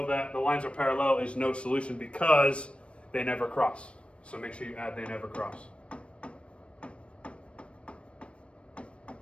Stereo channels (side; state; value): right; late; 0.060 ms